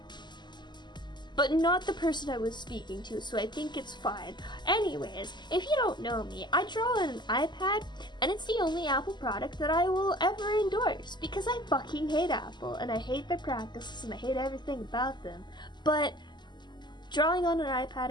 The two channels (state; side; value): late; right; 0.21 ms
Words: But not the person I was speaking to, so I think it's fine. Anyways, if you don't know me, I draw on an iPad, and it's the only Apple product that I will ever endorse, because I fucking hate Apple, and I hate their practices, and I hate everything about them. But drawing on an iPad